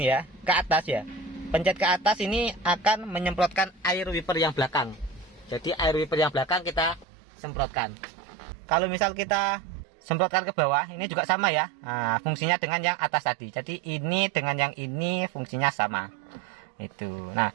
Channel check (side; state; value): left; drops out; at 7.1 s